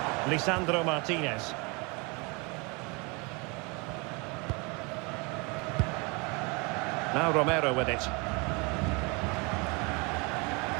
Lisandro Martinez. Now Romero with it.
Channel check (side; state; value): left; quieter; 29.3 dB